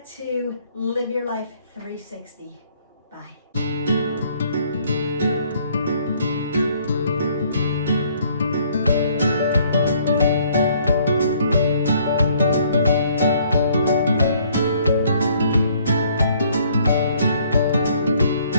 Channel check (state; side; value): inverted; both; correlation -0.63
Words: to live your life 360. Bye.